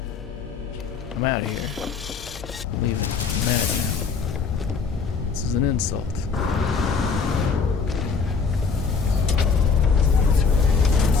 out of here. I'm leaving. I'm mad now. This is an insult.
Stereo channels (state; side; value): quieter; right; 5.3 dB